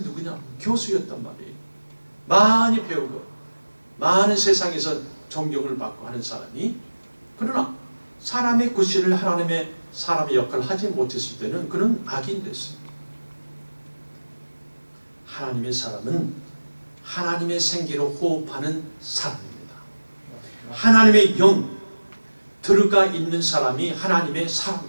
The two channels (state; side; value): inverted; both; correlation -1.00